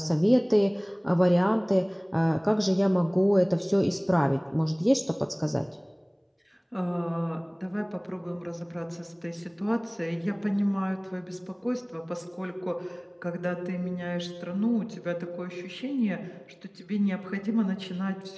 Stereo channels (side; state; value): both; identical; correlation 1.00